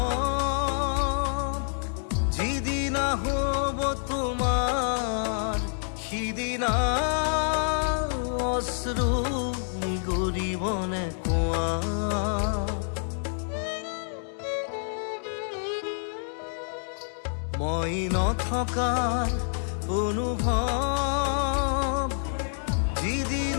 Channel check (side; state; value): right; silent; 60 dB below the other